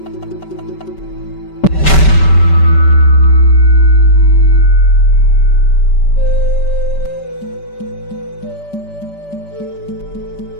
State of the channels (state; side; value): late; right; 5.2 ms